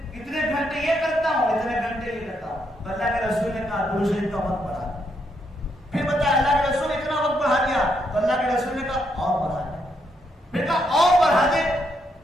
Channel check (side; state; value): both; normal; correlation 0.77